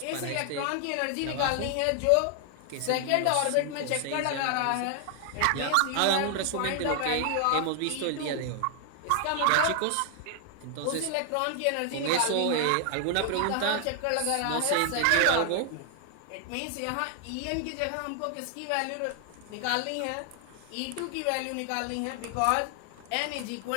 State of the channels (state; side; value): different; both; correlation 0.00